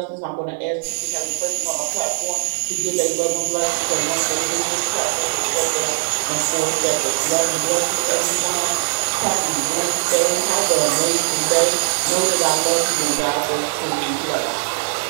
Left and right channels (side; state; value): left; silent; digital silence